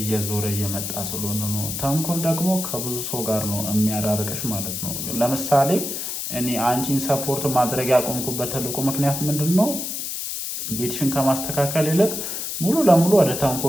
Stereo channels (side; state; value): left; noise; hiss, 4 dB below the sound